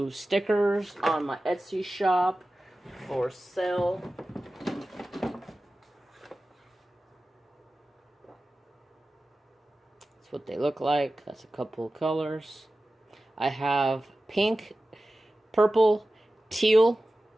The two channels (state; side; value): normal; both; correlation 0.95